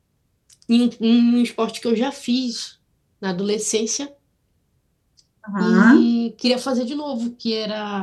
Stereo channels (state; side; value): identical; both; correlation 1.00